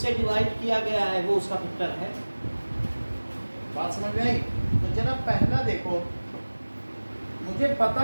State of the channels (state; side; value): inverted; both; correlation -1.00